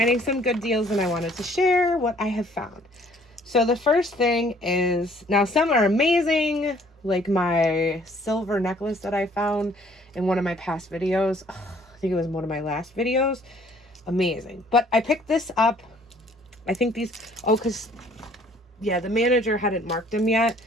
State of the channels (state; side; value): normal; both; correlation 0.59